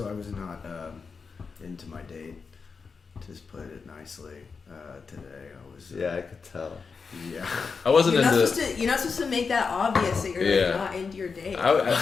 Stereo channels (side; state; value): right; quieter; 5.1 dB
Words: I was not into my date. Just put it nicely. Today, I was. Yeah, I could tell. Yeah. I wasn't You're not into. supposed to. You're not supposed to make that obvious that you're Yeah. like, not into your date. The